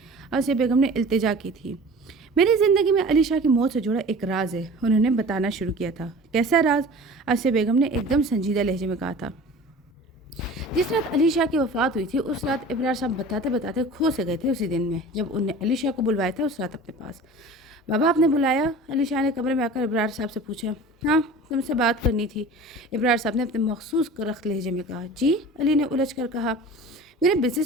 آسیہ بیگم نے التجا کی تھی۔ میری زندگی میں علی شاہ کی موت سے جڑا ایک راز ہے، انہوں نے بتانا شروع کیا تھا۔ کیسا راز؟ آسیہ بیگم نے ایک دم سنجیدہ لہجے میں کہا تھا۔ جس رات علی شاہ کی وفات ہوئی تھی اس رات ابرار صاحب بتاتے بتاتے کھو سے گئے تھے اسی دن میں جب انہوں نے علی شاہ کو بلوایا تھا اس رات اپنے پاس۔ بابا آپ نے بلایا؟ علی شاہ نے کمرے میں آ کر ابرار صاحب سے پوچھا۔ ہاں، تم سے بات کرنی تھی، ابرار صاحب نے اپنے مخصوص رخت لہجے میں کہا۔ جی؟ علی نے الجھ کر کہا۔ میرے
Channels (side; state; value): both; normal; correlation 0.40